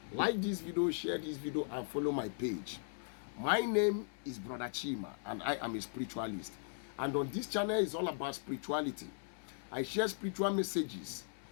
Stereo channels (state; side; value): silent; right; 52 dB below the other